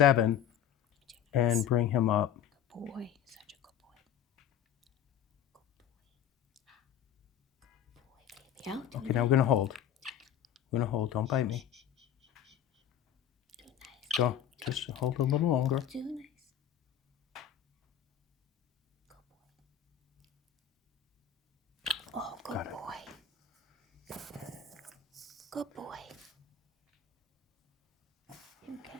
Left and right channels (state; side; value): quieter; right; 9.5 dB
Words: and bring him up. Good boy. Such a good boy. Good boy. Good boy, baby. Out. Do Okay, now we're going to hold. We're going to hold, don't bite me. nice. Go, just hold a little longer. Do nice. Good boy. Oh, good Got it. boy. Good boy. Okay.